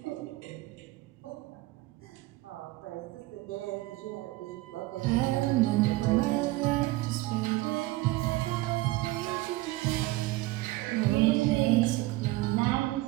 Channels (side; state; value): left; quieter; 19.3 dB